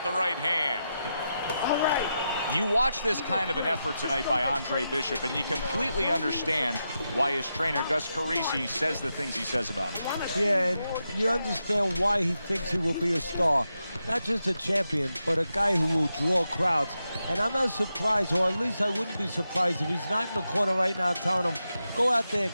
the right hand. All right. You watch this kind of an effort tonight by Andre Bishop, and you completely understand why his trainer, Gus Carisi, says the things he says about him. Yeah, and you understand why he thinks he will be a star. not just a champion, but a guy who will draw crowds. And I'm not surprised, or at least I wouldn't be surprised if he's not in the corner right now telling him, go out there and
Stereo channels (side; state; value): both; inverted; correlation -0.87